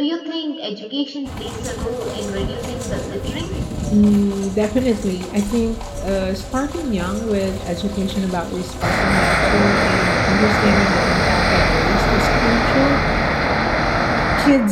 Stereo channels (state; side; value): identical; both; correlation 1.00